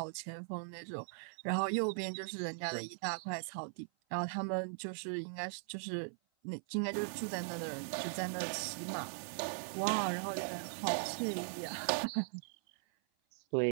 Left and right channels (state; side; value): silent; left; 51 dB below the other